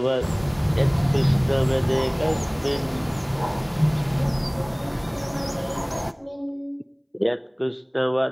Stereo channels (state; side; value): identical; both; correlation 1.00